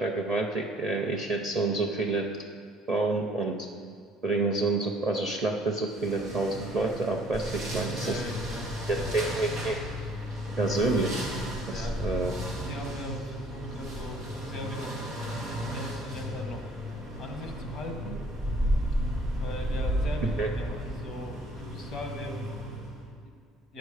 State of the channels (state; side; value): normal; both; correlation 0.57